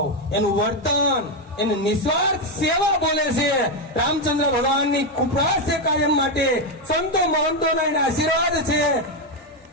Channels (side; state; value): both; normal; correlation 0.06